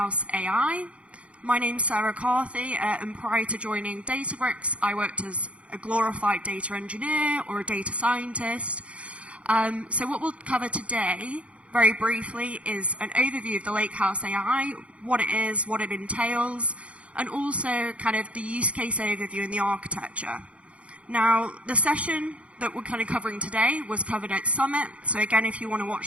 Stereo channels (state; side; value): late; left; 0.062 ms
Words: AI. My name's Sarah CARTHY, and prior to joining DATABRICKS, I worked as a glorified data engineer or a data scientist. So what we'll cover today, very briefly, is an overview of the Lakehouse AI, what it is, what it entails, and also kind of the use case overview and the architecture. Now, the session that we're kind of covering today was covered at Summit. So again, if you want to